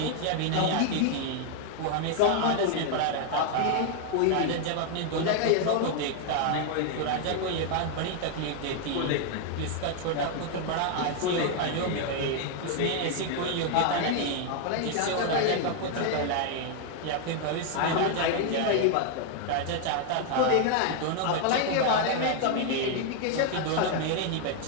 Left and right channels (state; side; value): different; both; correlation 0.00